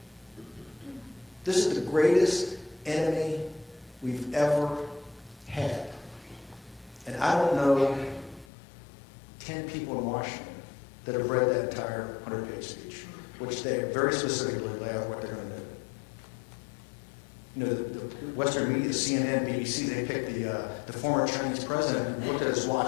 This is the greatest enemy we've ever had. And I don't know 10 people in Washington that have read that entire 100-page speech, which they very specifically lay out what they're going to do. The Western media, CNN, BBC, they picked the former Chinese president and looked at his watch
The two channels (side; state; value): right; drops out; at 8.5 s